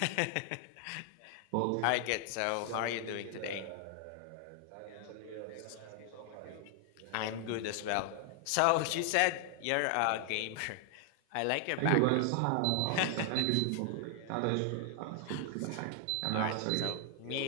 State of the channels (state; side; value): different; both; correlation 0.00